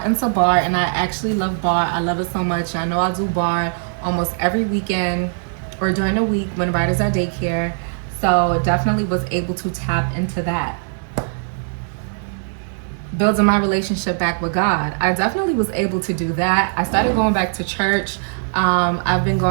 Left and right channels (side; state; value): left; silent; 66 dB below the other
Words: into bar, and I actually love bar. I love it so much. I know I'll do bar almost every weekend or during the week when Ryder's at daycare. So definitely was able to tap into that. Building my relationship back with God. I definitely was able to do that. I started going back to church. I've been